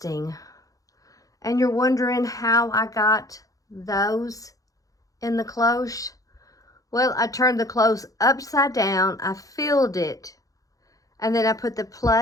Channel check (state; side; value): late; right; 0.17 ms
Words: And you're wondering how I got those in the cloche? Well, I turned the cloche upside down, I filled it, And then I put the